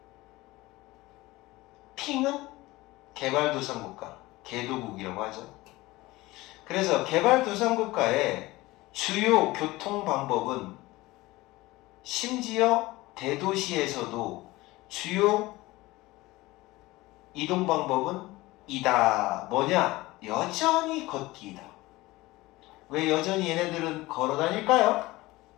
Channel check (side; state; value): right; quieter; 19.8 dB